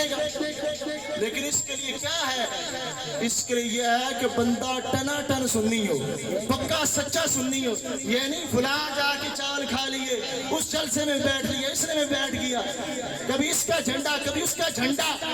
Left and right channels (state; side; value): noise; right; rumble, 24 dB below the sound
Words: گا۔ لیکن اس کے لیے کیا ہے؟ اس کے لیے یہ ہے کہ بندہ ٹنا ٹن سنی ہو، پکا سچا سنی ہو، یہ نہیں فلاں جا کے چاول کھا لیے، اس جلسے میں بیٹھ لیا، اس میں بیٹھ گیا، کبھی اس کا جھنڈا کبھی اس کا جھنڈا،